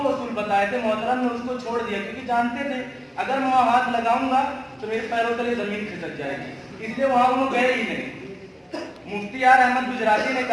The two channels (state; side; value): identical; both; correlation 1.00